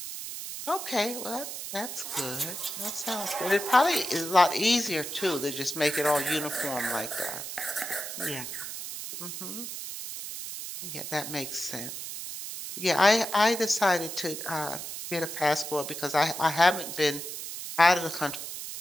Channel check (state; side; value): noise; right; hiss, 7 dB below the sound